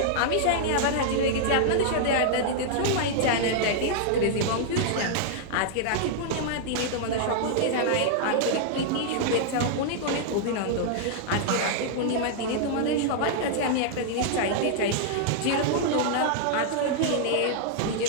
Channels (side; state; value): both; different; correlation -0.01